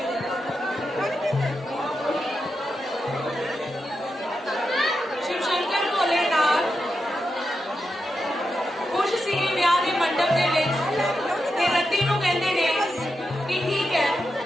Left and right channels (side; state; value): both; normal; correlation 0.87